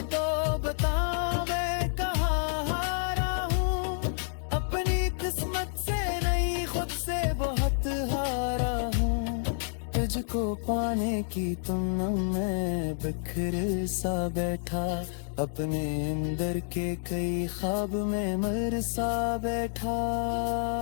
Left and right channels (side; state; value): right; silent; digital silence